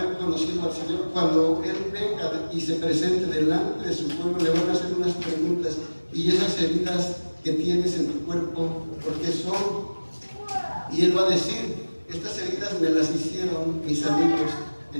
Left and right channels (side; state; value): both; inverted; correlation -1.00